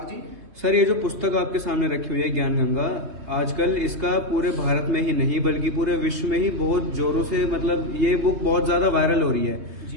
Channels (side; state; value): left; late; 3.3 ms